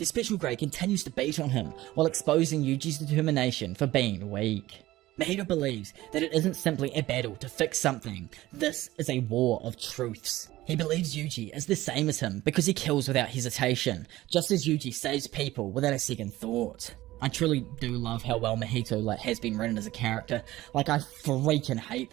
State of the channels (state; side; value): quieter; left; 16.7 dB